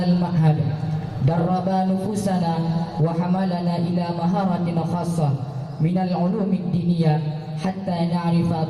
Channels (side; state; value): both; identical; correlation 1.00